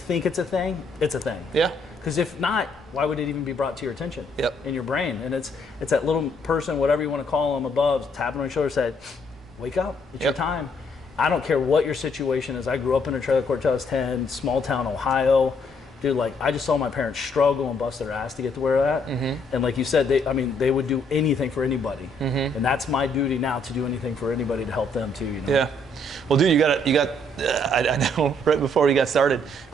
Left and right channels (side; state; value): both; normal; correlation 0.69